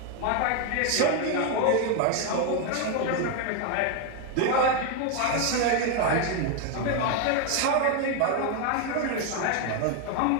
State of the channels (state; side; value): different; both; correlation 0.01